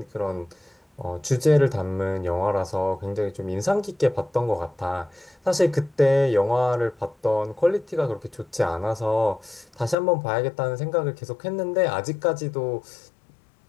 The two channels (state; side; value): drops out; right; at 10.0 s